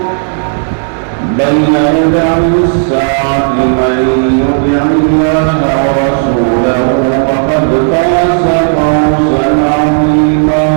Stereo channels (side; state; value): left; silent; digital silence